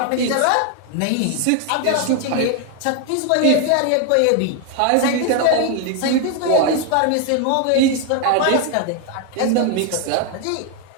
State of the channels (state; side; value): different; both; correlation 0.01